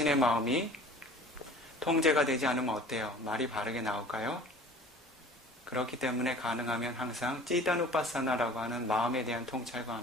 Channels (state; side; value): normal; both; correlation 0.45